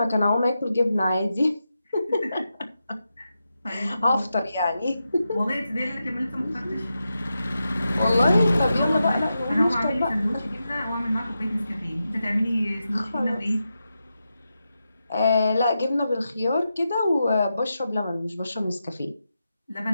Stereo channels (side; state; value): both; inverted; correlation -0.89